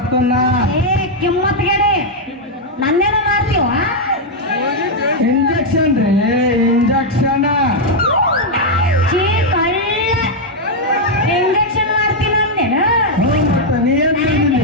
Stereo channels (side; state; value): both; normal; correlation -0.01